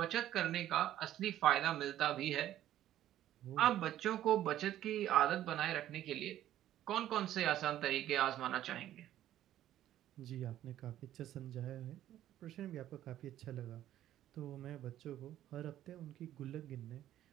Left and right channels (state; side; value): quieter; left; 12.6 dB